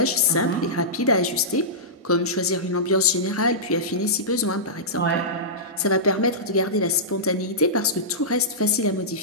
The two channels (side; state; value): both; normal; correlation -0.16